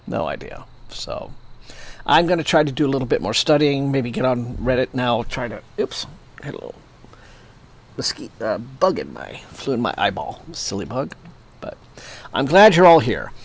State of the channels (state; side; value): identical; both; correlation 1.00